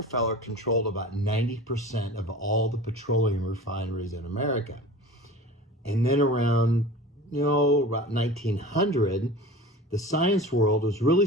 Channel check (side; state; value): both; normal; correlation 0.37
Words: controlled about 90% of all the petroleum refineries in America. And then around, about 1900, the science world was